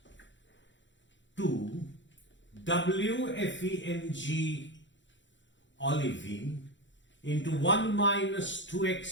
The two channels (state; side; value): late; right; 0.54 ms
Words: 2 WFEMG olivine into 1 minus